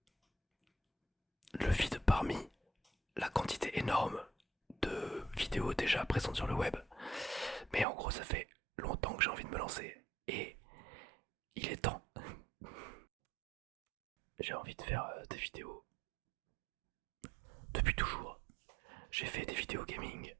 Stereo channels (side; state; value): left; drops out; at 7.9 s